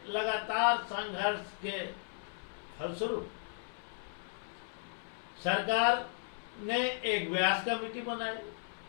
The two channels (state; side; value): silent; right; 54 dB below the other